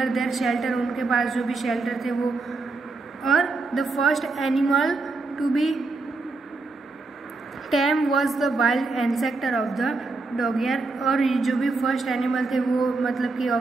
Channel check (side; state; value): left; quieter; 3.6 dB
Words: their shelter, उनके पास जो भी शेल्टर थे वो। और the first animal to be tame was the wild ancestor of the dog, यार। और जो भी फर्स्ट एनिमल थे वो मतलब कि